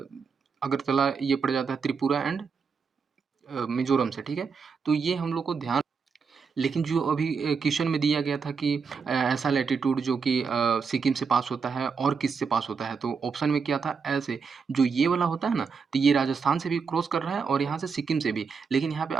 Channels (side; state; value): left; quieter; 5.5 dB